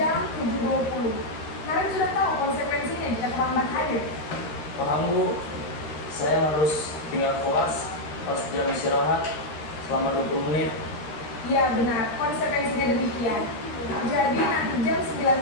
7.20. Naren sudah tahu konsekuensinya jika terlambat hadir. Paham bu, saya harus tinggal kelas pas jam istirahat selama 20 menit. Iya benar, konsekuensinya demikian. Jadi nanti jam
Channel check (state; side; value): late; right; 13 ms